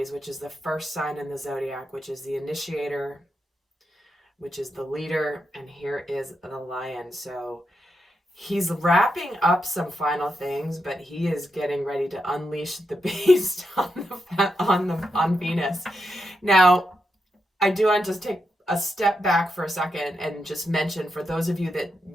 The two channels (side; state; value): both; normal; correlation 0.85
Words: which is the first sign in the zodiac, which is the initiator, which is the leader. And here is the lion. So he's wrapping up some final things, but he is getting ready to unleash the beast on Venus. Now, I do want to just take a step back for a second and just mention, for those of you that